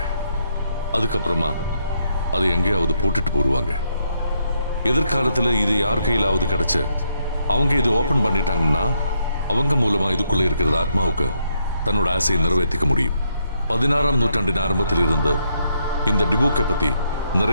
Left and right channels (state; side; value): inverted; both; correlation -0.76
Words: அதுக்கப்புறமா அதை எங்கேயாவது போட்டுட்டு போடுவாங்க. எதிர்காலத்தில் இது யார் கையிலாவது கிடைச்சு அவங்க இது ஓபன் பண்ணிட்டாங்கன்னா அவங்க மூலமா இதுக்குள்ள இருக்கிற ஆத்மாவுக்கு தன்னோட ஆசையை நிறைவேற்றிக்க முடியும். 16ஆம் நூற்றாண்டின் ஆரம்பத்தில் இருந்து இந்த டிபுக்கை பத்தி